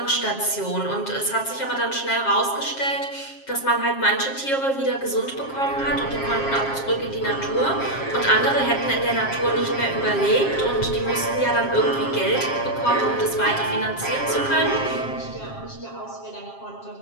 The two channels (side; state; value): right; late; 7.4 ms